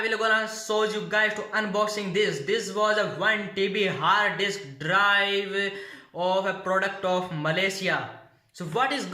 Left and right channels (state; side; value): identical; both; correlation 1.00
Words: will gonna show you guys to unboxing this was a 1 TB hard disk drive of a product of Malaysia. So what is